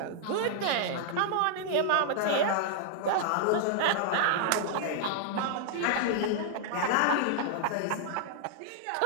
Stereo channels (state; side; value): different; both; correlation -0.01